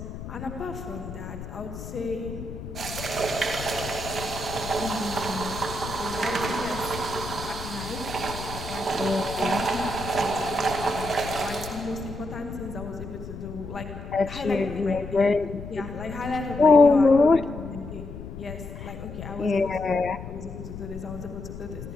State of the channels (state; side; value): noise; left; rumble, 10 dB below the sound